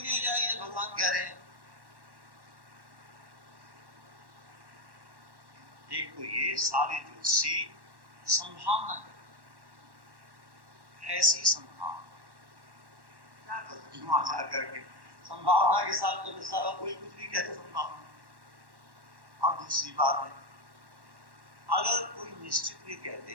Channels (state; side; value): late; left; 1.1 ms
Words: नहीं हो जाएगी जब भगवान कह रहे हैं? एक तो ये सारे ज्योतिषी संभावना करते, ऐसी संभावना क्या तो करके संभावना के साथ तो सारा कोई कुछ भी कहते संभावना। और दूसरी बात है, अगर कोई निश्चित भी कह दे